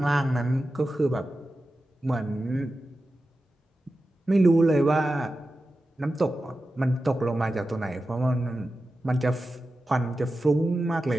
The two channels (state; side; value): normal; both; correlation 0.93